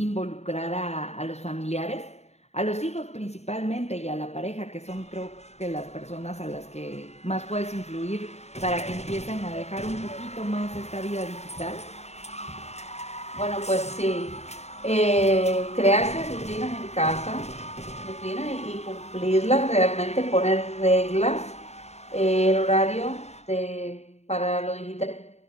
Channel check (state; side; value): late; right; 0.32 ms